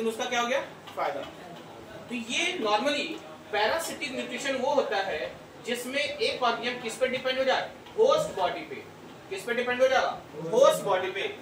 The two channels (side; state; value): both; identical; correlation 1.00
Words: उसका क्या हो गया, फायदा। तो ये नॉर्मली पैरासिटिक न्यूट्रिशन वो होता है जिसमें एक ऑर्गेनिज्म किस पे डिपेंड हो जाए, होस्ट बॉडी पे। किस पे डिपेंड हो जाएगा, होस्ट बॉडी पे।